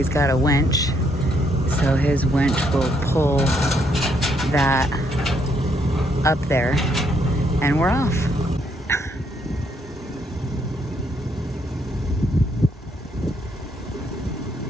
got a winch. So his winch will pull that up there and we're off.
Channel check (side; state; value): both; normal; correlation 0.73